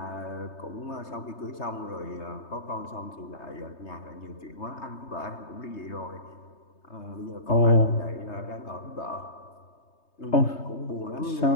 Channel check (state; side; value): late; right; 3.2 ms